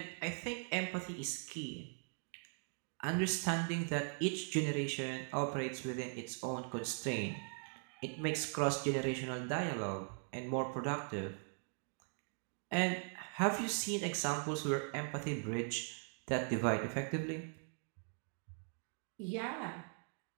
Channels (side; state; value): left; silent; 51 dB below the other